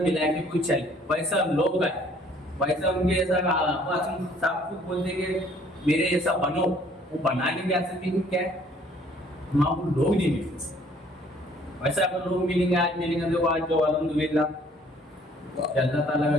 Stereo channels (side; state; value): both; normal; correlation 0.58